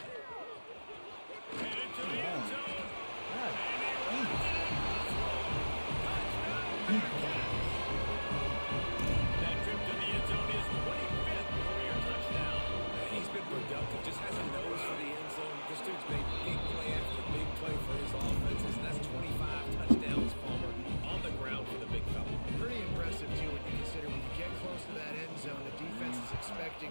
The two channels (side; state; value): both; inverted; correlation -1.00